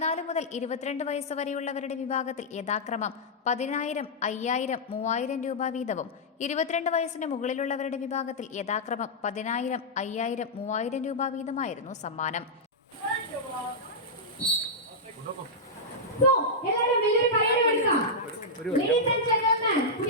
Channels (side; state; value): both; normal; correlation -0.08